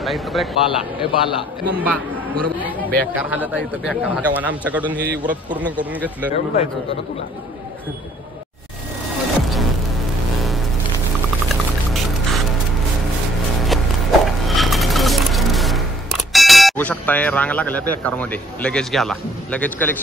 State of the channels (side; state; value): both; normal; correlation 0.61